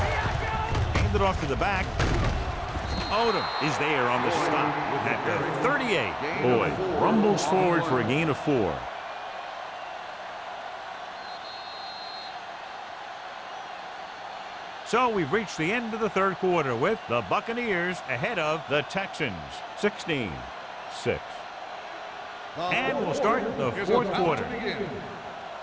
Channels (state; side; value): identical; both; correlation 1.00